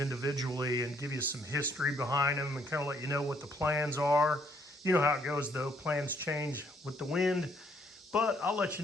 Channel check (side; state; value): both; normal; correlation 0.68